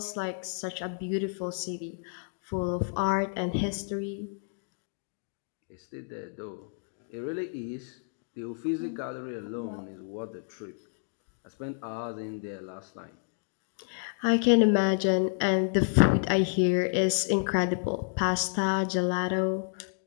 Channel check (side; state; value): right; silent; digital silence